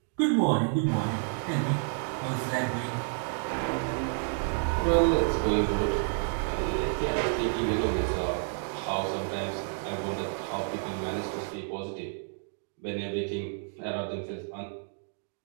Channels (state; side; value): silent; left; 58 dB below the other